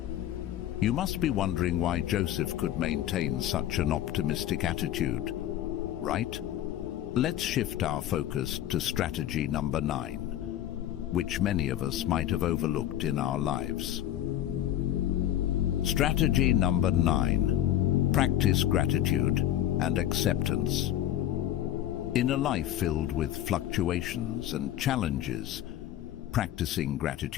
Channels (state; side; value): quieter; right; 12.2 dB